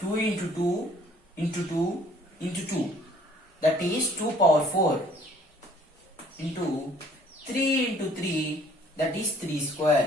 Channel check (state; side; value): normal; both; correlation 0.57